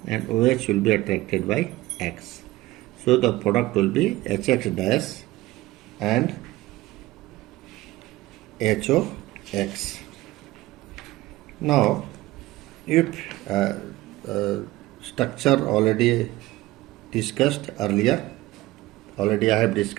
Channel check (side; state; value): left; quieter; 18.0 dB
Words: and OH will be attracted by X. So the product will be HX dash and HOX. Now, if structure already discussed earlier, I have